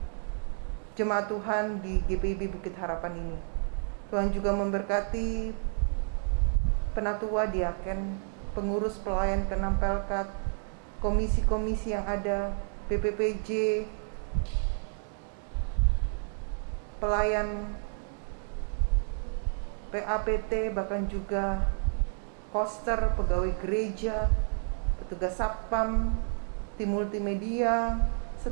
jemaat Tuhan di GPIB Bukit Harapan ini. Tuhan juga memberkati penatua, diaken, pengurus pelayan ke-6 Pelkat, komisi-komisi yang ada, BPPJ, pelayan PAPT, bahkan juga koster, pegawai gereja, petugas satpam, tim multimedia,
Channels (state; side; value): silent; left; 58 dB below the other